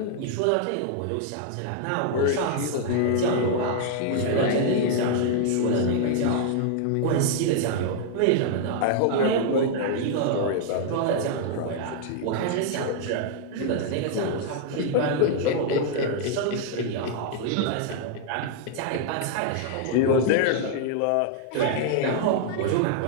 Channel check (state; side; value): different; both; correlation -0.01